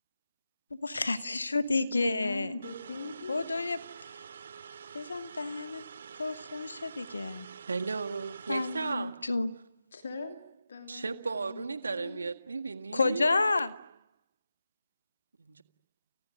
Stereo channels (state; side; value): inverted; both; correlation -0.91